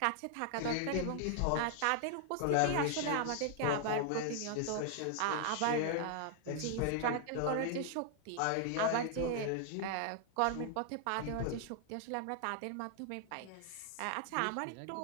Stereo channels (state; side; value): different; both; correlation 0.00